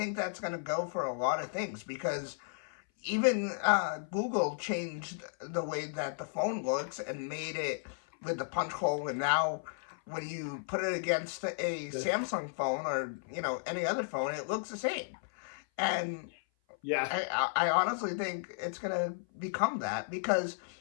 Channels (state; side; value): silent; right; 55 dB below the other